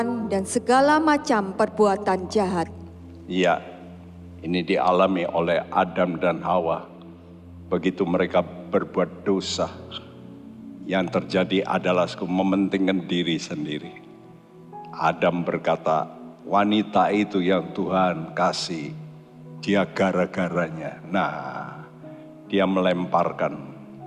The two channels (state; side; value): identical; both; correlation 1.00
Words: dan segala macam perbuatan jahat. ya, ini dialami oleh Adam dan Hawa. Begitu mereka berbuat dosa, yang terjadi adalah mementingkan diri sendiri. Adam berkata, wanita itu yang Tuhan kasih, dia gara-garanya. Nah, dia melemparkan.